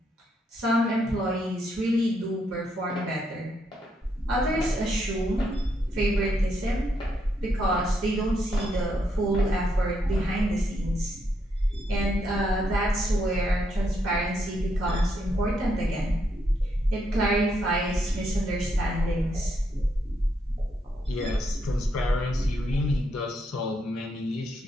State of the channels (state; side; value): normal; both; correlation 0.77